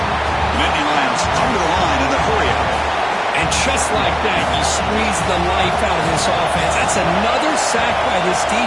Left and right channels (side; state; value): both; identical; correlation 1.00